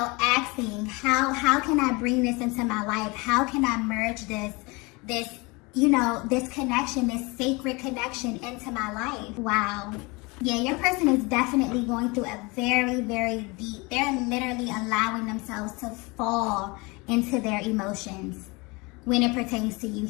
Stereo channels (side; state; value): right; quieter; 26.3 dB